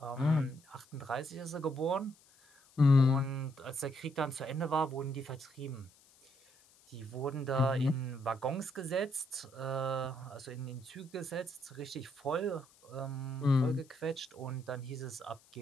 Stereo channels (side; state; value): left; noise; hiss, 28 dB below the sound